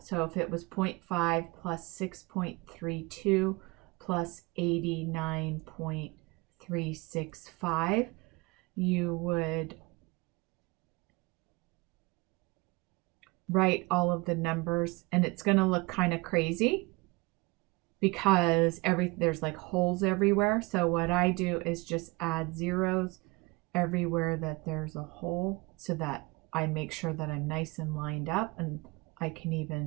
So if it was 0.5 plus 6.32 plus 89.365, you would write all of the numbers, and it's going to look kind of crazy because there's like holes everywhere. So what I do is just add zeros everywhere that there's a hole so that I make sure that I'm nice and lined up, and I can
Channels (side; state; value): left; quieter; 25.0 dB